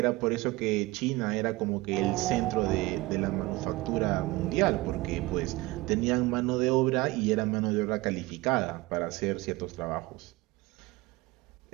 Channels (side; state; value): left; quieter; 20.7 dB